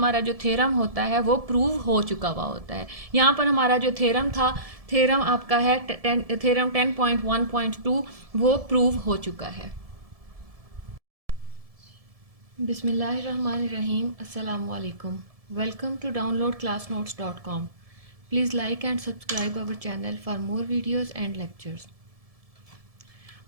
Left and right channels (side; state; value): left; late; 1.7 ms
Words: जो थ्योरम होता है वो प्रूव हो चुका हुआ होता है। यहाँ पर हमारा जो थ्योरम था, थ्योरम आपका है थ्योरम 10.1.2, वो प्रूव हो चुका है। Bismillahirrahmanirrahim. Assalamu alaikum. Welcome to downloadclassnotes.com. Please like and subscribe our channel for more videos and lectures.